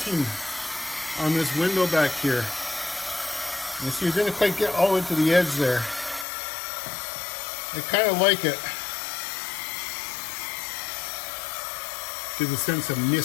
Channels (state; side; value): drops out; right; at 6.2 s